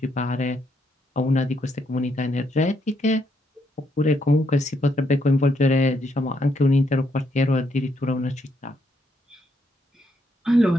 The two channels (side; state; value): both; normal; correlation 0.76